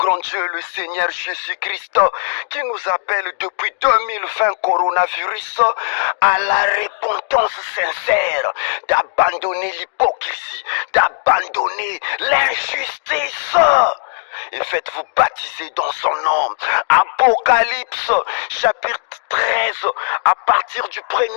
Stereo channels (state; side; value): silent; right; digital silence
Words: Dieu, le Seigneur Jésus-Christ, qui nous appelle depuis 2020 coronavirus à la repentance sincère, d'abandonner l'hypocrisie, d'abandonner l'injustice. Et faites-vous baptiser dans son nom. Apocalypse chapitre 13 à partir du